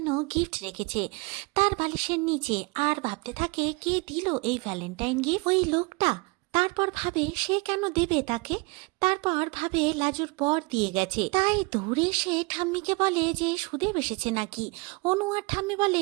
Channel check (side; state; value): left; quieter; 27.8 dB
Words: গিফট রেখেছে তার বালিশের নিচে, আর ভাবতে থাকে কে দিল এই ভ্যালেন্টাইন গিফট? ওই লোকটা। তারপর ভাবে সে কেন দেবে তাকে, তারপর ভাবে লাজুর বর দিয়ে গেছে, তাই দৌড়ে সে ঠাম্মিকে বলে যে সুদেব এসেছে নাকি। অনু আর ঠাম্মি বলে